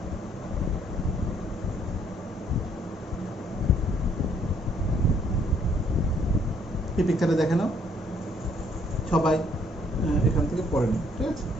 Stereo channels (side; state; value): both; normal; correlation 0.66